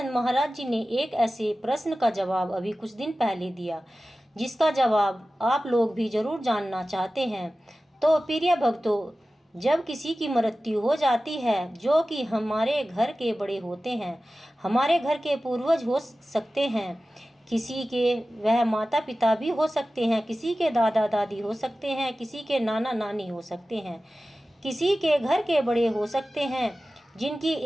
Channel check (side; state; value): both; normal; correlation 0.95